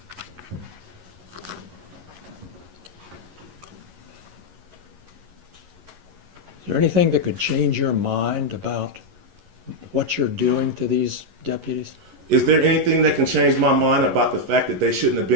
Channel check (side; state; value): left; late; 11 ms